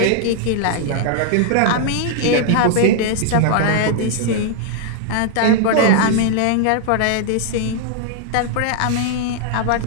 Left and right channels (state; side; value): different; both; correlation -0.01